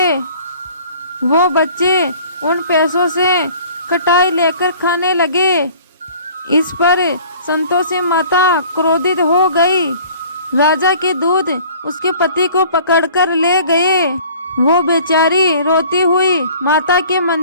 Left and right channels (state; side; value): inverted; both; correlation -0.50